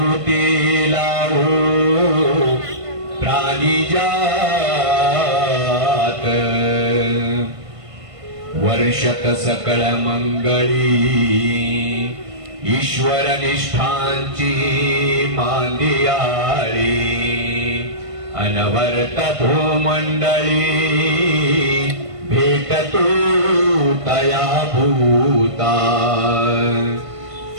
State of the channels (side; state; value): left; late; 1.5 ms